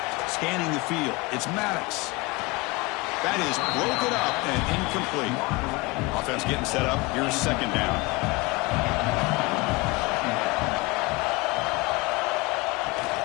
Scanning the field. It's Maddox. That is broken up and incomplete. Offense getting set up. Here's 2nd down.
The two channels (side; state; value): right; quieter; 24.2 dB